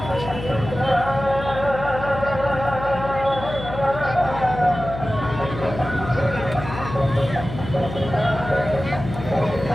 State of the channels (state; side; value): noise; left; hum, 9 dB below the sound